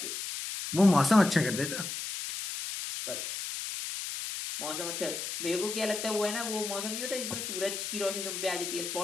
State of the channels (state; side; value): noise; left; hiss, 5 dB below the sound